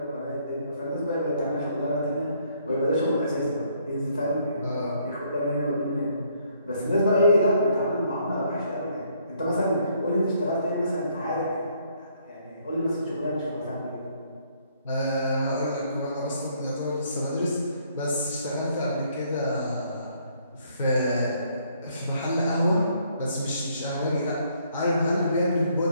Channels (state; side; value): inverted; both; correlation -0.67